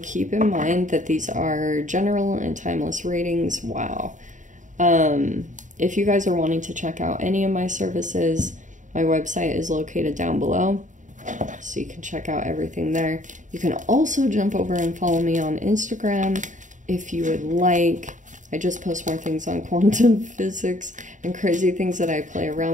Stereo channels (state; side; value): late; left; 0.36 ms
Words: in mind that these are general and timeless readings. Wow. If you guys are wanting to check out any of my services, my website is located down below, so you can check out everything there. You can also jump over and follow me on Instagram if you would like. I just post more things on quantum physics and crazy things that I play